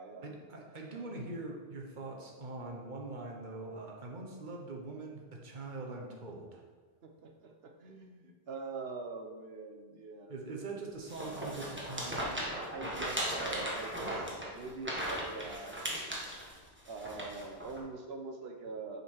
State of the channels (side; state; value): both; normal; correlation -0.03